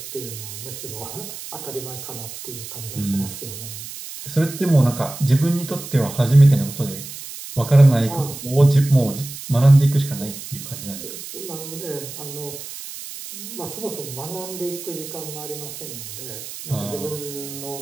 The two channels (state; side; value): noise; right; hiss, 11 dB below the sound